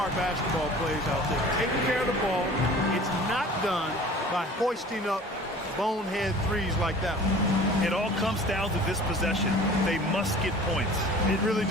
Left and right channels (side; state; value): both; normal; correlation 0.44